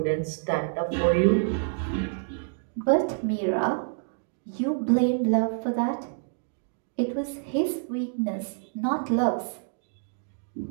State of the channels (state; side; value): silent; left; digital silence